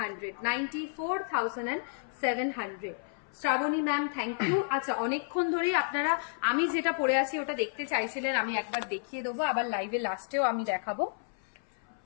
94,700। Shrabani ma'am thank you. আচ্ছা, অনেকক্ষণ ধরেই আপনারা আমি যেটা পরে আছি ওটা দেখতে চাইছিলেন, আমি একবার দেখিয়ে দেবো, আবার লাইভে লাস্টেও আমি দেখাবো।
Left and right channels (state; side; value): silent; right; 57 dB below the other